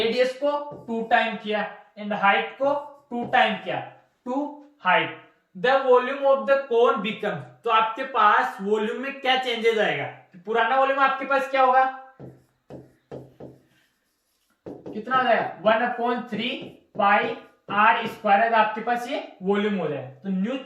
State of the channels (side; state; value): both; identical; correlation 1.00